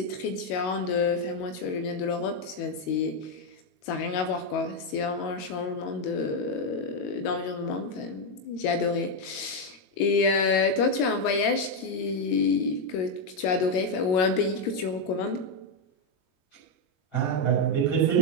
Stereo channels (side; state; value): right; late; 22 ms